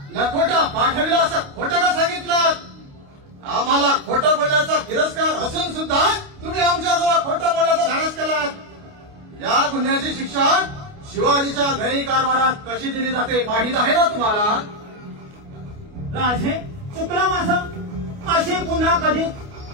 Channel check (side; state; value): left; late; 29 ms